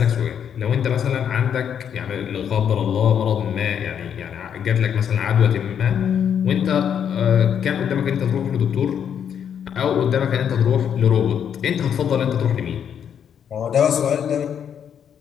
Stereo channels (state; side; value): quieter; right; 8.4 dB